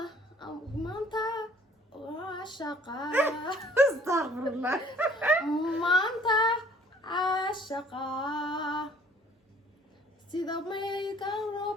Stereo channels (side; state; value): both; normal; correlation 0.56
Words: ما أنت عاشقة استغفر الله ما أنت عاشقة سيدا ميكا